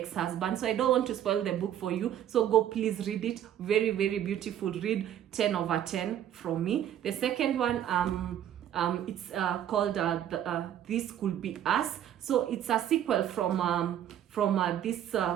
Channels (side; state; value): left; quieter; 10.7 dB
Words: So I don't want to spoil the book for you. So go please read it. Very, very beautiful read. 10 over 10 from me. The second one, it's called This Could Be Us. So it's a sequel from it's